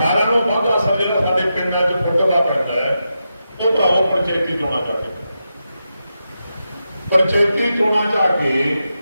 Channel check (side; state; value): both; inverted; correlation -0.88